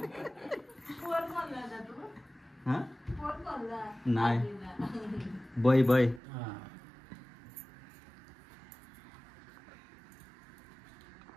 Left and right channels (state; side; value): drops out; left; at 6.2 s